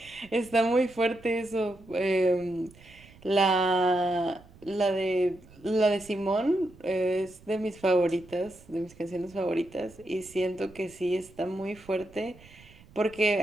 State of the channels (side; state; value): right; noise; rumble, 24 dB below the sound